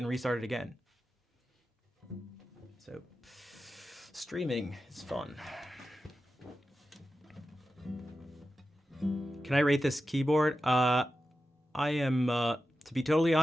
restarted again. So streaming is fun. Can I rate this keyboard? I am, to be totally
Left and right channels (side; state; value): both; normal; correlation 0.92